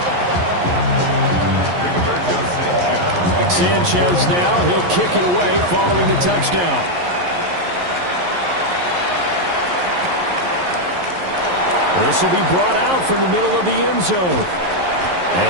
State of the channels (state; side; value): late; left; 11 ms